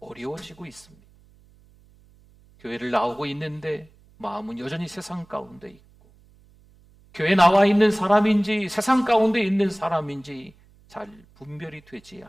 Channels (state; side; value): noise; right; hum, 29 dB below the sound